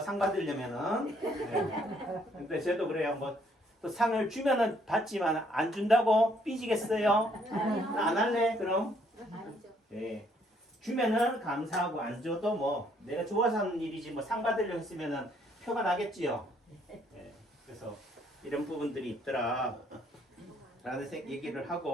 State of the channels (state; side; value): normal; both; correlation 0.67